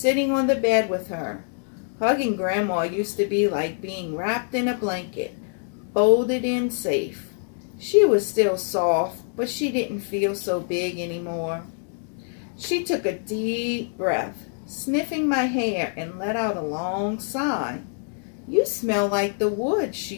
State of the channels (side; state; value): right; silent; 57 dB below the other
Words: on the bed with her. Hugging Grandma used to be like being wrapped in a blanket, folded in safe. She was still soft, but she didn't feel so big anymore. She took a deep breath, sniffing my hair, and let out a long sigh. "You smell like the woods," she